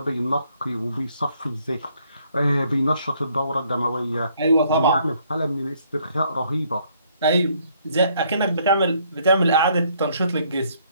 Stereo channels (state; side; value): inverted; both; correlation -0.67